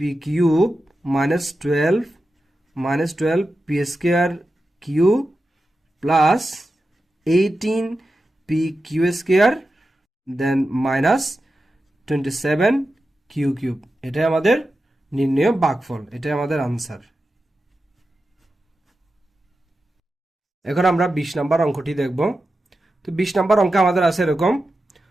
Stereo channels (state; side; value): normal; both; correlation 0.91